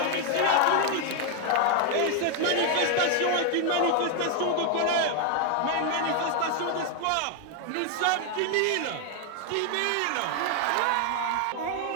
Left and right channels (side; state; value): both; different; correlation 0.00